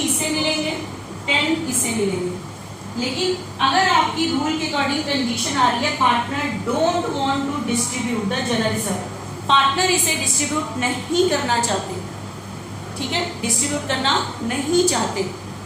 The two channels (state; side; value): identical; both; correlation 1.00